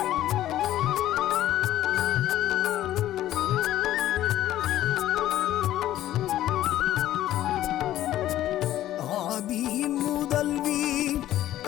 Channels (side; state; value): right; quieter; 13.5 dB